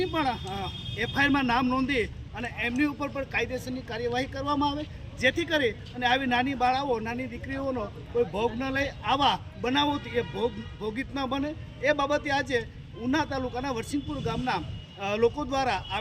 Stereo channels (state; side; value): identical; both; correlation 1.00